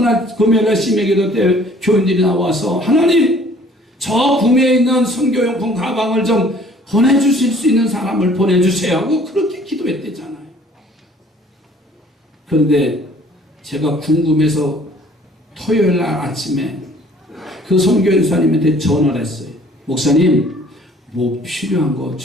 금요일날 심야기도 때 교인들이 나와서 하나님, 저 구미에 있는 선교용품 가방을 좀 보내주실 수 있는 사람을 보내주세요 하고 그렇게 기도했대잖아요. 그런데 제가 궁금해서 토요일날 아침에 그 선교연수님한테 전화를 했어요. 목사님, 뭐 필요한 거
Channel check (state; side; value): normal; both; correlation 0.55